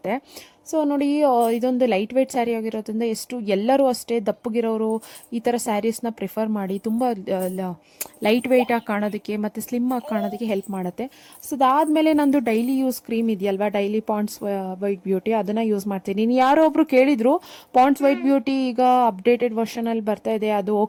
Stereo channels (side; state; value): both; identical; correlation 1.00